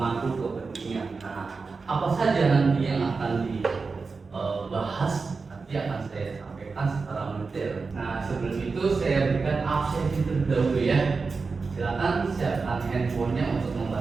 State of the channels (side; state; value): left; quieter; 4.5 dB